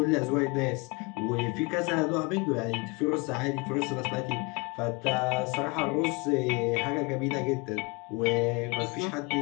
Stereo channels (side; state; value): right; quieter; 28.0 dB